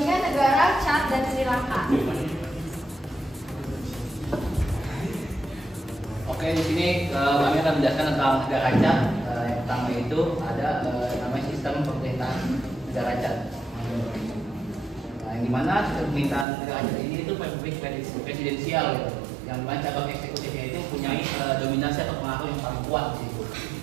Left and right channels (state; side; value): drops out; left; at 16.4 s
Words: negara Chad dan Sri Lanka. Oke, di sini kami akan menjelaskan tentang negara Chad. Yang pertama itu ada namanya sistem pemerintahan negara Chad. Yang dimana sistem pemerintahan negara Chad ini itu republik presidensial, gitu. Yang dimana cabang eksekutifnya itu mempunyai dominasi atau pengaruh yang paling kuat, gitu.